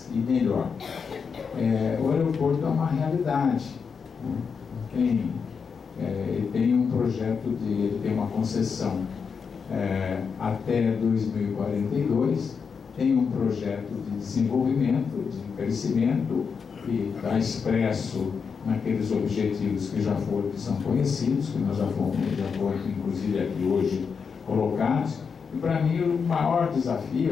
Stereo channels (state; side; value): quieter; right; 5.9 dB